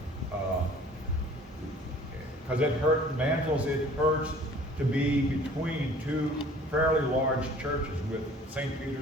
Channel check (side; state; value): both; normal; correlation 0.50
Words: Because Mantles, it hurts to be between 2 fairly large churches with St.